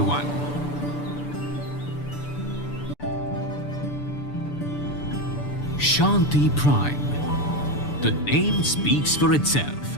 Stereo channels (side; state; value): right; late; 6.9 ms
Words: Shanti Prime, the name speaks for itself.